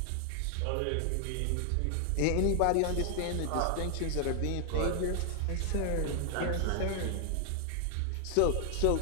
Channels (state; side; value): different; both; correlation 0.00